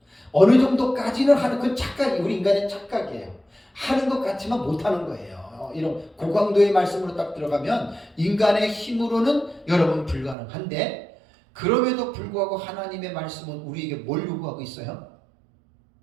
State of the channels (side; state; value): left; drops out; at 10.4 s